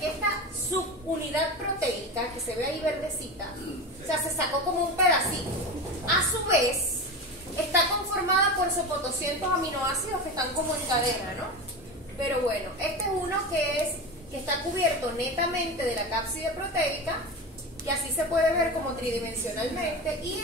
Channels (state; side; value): normal; both; correlation 0.25